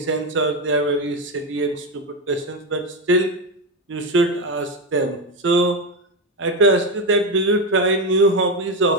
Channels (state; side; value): normal; both; correlation 0.11